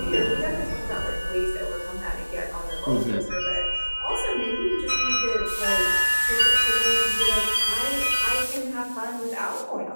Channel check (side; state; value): both; inverted; correlation -1.00